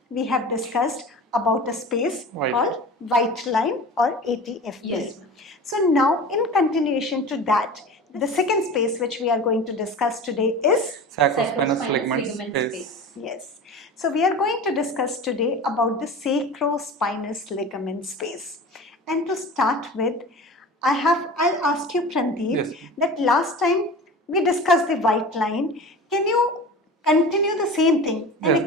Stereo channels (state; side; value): normal; both; correlation 0.34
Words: we have discussed about a space called white line or ATFP. Yes. So now in continuation to that, the second space which we are going to discuss today is Sacro-spinous ligament space. Yes. So we are going to discuss today about the sacro-spinous ligament space. And to start with, I'll ask you, Prandeep, that last time we discussed the white line. Can you continue the same thing and